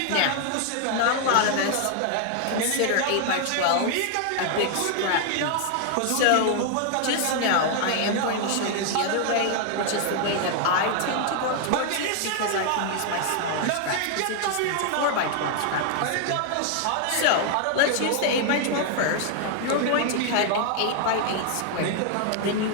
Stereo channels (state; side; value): different; both; correlation 0.00